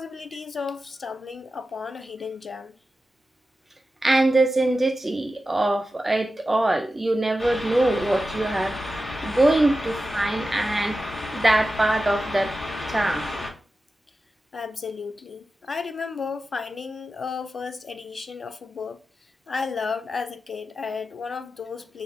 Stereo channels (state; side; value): normal; both; correlation 0.92